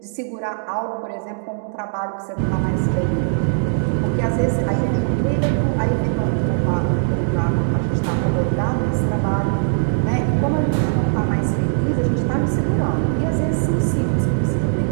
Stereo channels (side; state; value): left; silent; digital silence